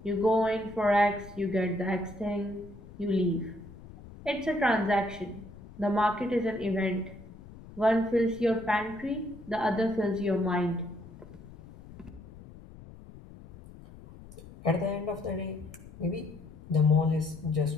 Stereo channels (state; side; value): noise; left; rumble, 18 dB below the sound